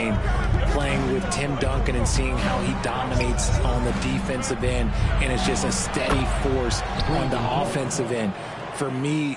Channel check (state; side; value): identical; both; correlation 1.00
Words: Playing with Tim Duncan and seeing how he dominates on the defensive end and is just a steady force on the offensive end. For me,